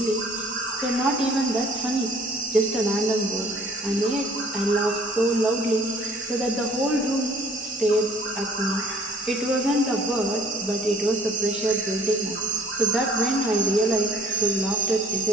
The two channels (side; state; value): both; normal; correlation 0.57